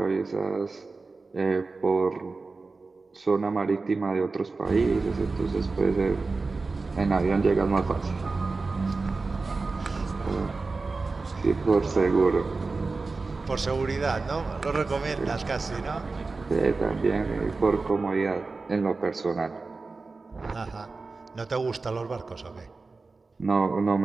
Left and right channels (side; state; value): left; quieter; 3.9 dB